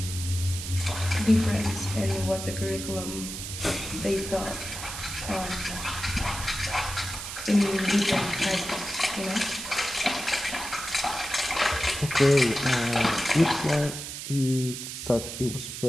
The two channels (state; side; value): noise; right; hiss, 8 dB below the sound